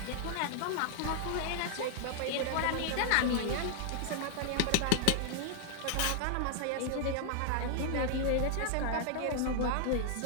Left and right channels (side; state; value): both; different; correlation 0.00